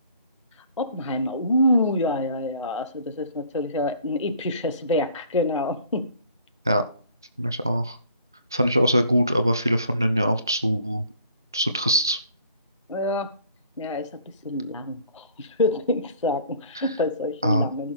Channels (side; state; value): both; inverted; correlation -0.55